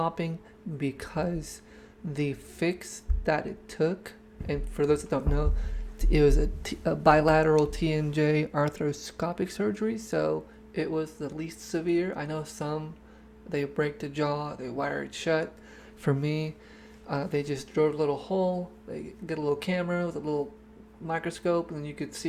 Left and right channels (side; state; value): both; identical; correlation 1.00